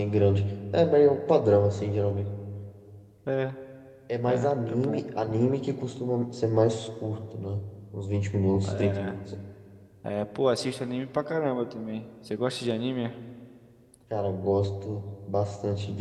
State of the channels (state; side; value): identical; both; correlation 1.00